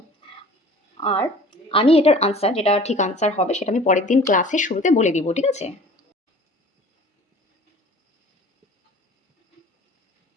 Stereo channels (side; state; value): both; normal; correlation 0.46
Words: আর আমি এটার আনসার, যেটা ঠিক আনসার হবে সেটা আমি পরের দিন ক্লাসের শুরুতে বলে দিব, ঠিক আছে?